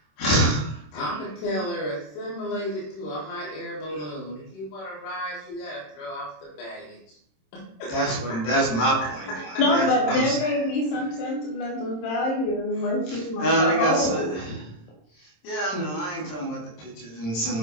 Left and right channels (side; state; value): right; late; 26 ms